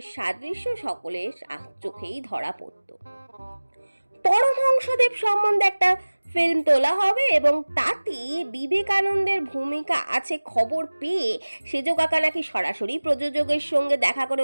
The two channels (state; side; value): inverted; both; correlation -1.00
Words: সাদৃশ্য সকলের চোখেই ধরা পড়ত। পরমহংসদেব সম্বন্ধে একটা ফিল্ম তোলা হবে এবং তাতে বিবেকানন্দের ভূমিকা আছে খবর পেয়ে সেজো কাকা নাকি সরাসরি প্রযোজকের সঙ্গে দেখা করে